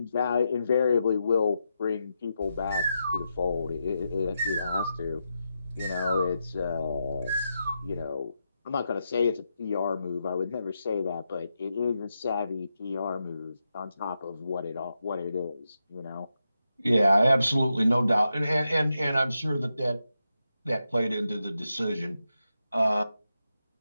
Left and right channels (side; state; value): both; inverted; correlation -0.86